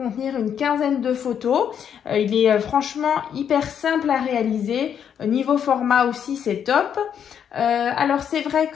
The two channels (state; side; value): quieter; right; 8.4 dB